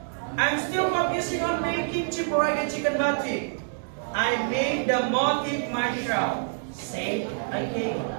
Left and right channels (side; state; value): left; silent; digital silence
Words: I'm still focusing on making Ciparaga chicken batik. I made the motif myself, said